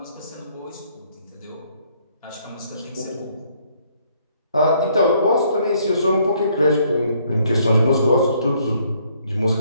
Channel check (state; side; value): inverted; both; correlation -0.67